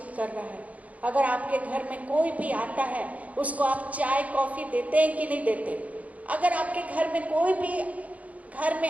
कर रहा है। अगर आपके घर में कोई भी आता है, उसको आप चाय कॉफी देते हैं कि नहीं देते? अगर आपके घर में कोई भी घर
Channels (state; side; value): late; left; 0.070 ms